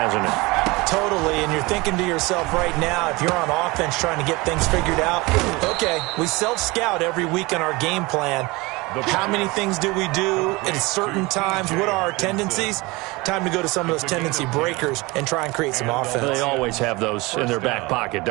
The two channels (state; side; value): quieter; left; 23.5 dB